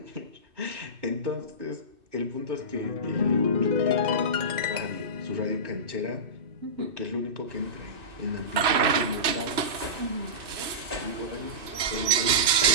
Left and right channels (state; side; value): late; left; 2.6 ms